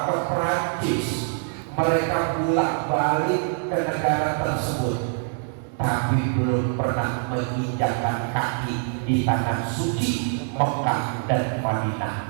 ke Perancis, mereka bolak-balik ke negara tersebut, tapi belum pernah menginjakkan kaki di tanah suci Mekah dan Madinah.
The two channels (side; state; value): left; silent; 62 dB below the other